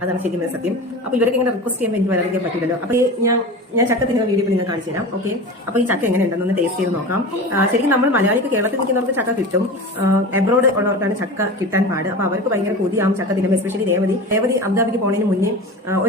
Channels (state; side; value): normal; both; correlation 0.31